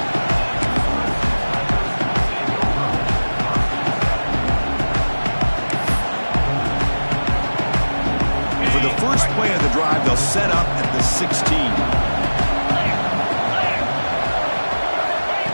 And for the first play of the drive, they'll set up at the 16.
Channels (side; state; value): both; inverted; correlation -1.00